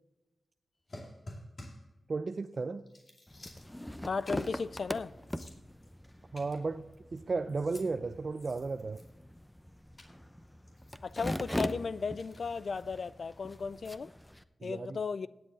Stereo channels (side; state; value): both; normal; correlation 0.91